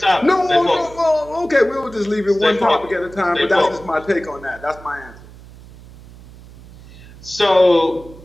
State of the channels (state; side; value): noise; right; hum, 20 dB below the sound